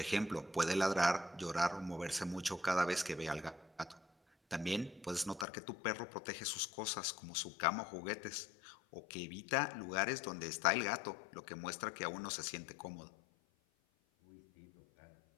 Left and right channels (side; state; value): right; drops out; at 5.5 s